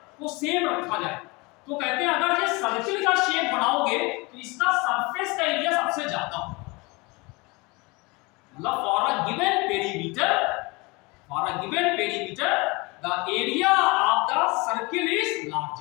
को सेम रखा जाए, तो कहते हैं अगर ये सर्किल का शेप बनाओगे तो इसका सरफेस का एरिया सबसे ज्यादा हो, मतलब for a given perimeter the area of the circle is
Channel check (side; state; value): right; quieter; 26.0 dB